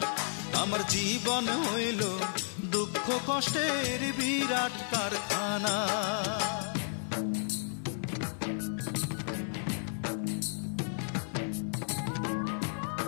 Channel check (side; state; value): right; silent; digital silence